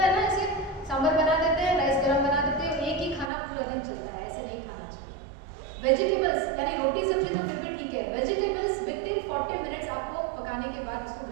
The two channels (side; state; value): left; drops out; at 3.3 s